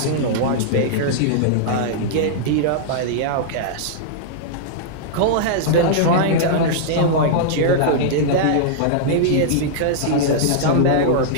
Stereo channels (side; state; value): both; different; correlation -0.02